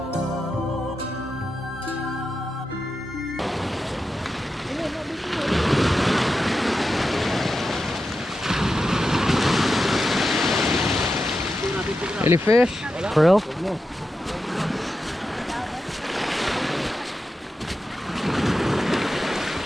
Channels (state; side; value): normal; both; correlation 0.89